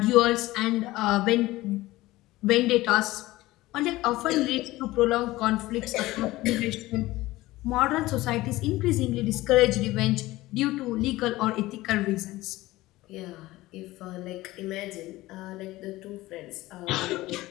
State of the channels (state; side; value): quieter; right; 18.1 dB